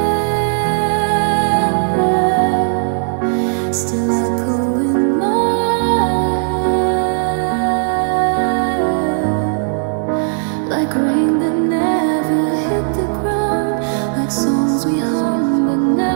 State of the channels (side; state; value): left; silent; digital silence